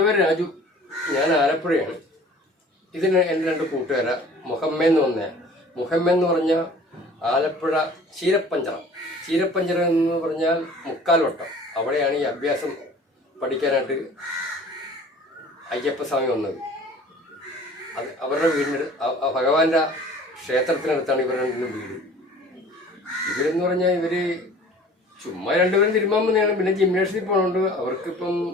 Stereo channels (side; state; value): both; normal; correlation 0.48